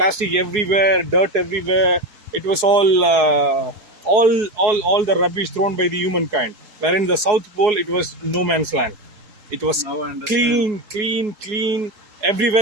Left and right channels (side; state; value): left; late; 4.7 ms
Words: everywhere, dirt everywhere. It was all the rubbish thrown by the humankind. Where in the South Pole, it was no man's land. It was Now I understand. clean, clean, clean.